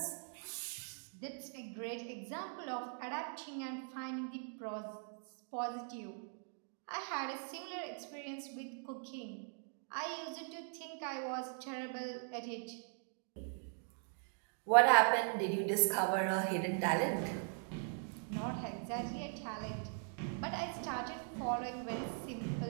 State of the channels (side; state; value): left; silent; 51 dB below the other